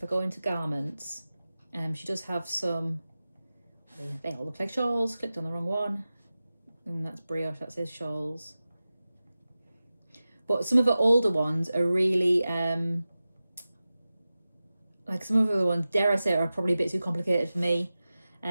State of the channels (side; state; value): both; inverted; correlation -0.95